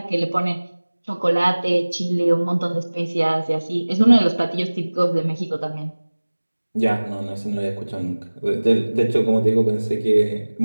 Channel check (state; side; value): inverted; both; correlation -1.00